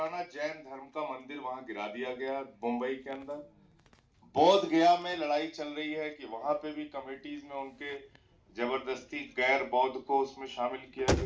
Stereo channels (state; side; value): identical; both; correlation 1.00